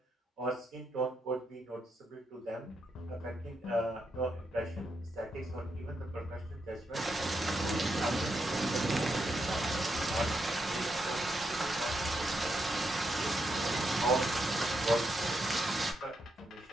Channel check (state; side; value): normal; both; correlation 0.82